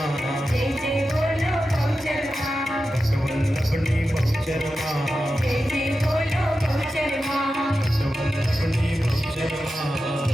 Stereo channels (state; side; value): normal; both; correlation 0.91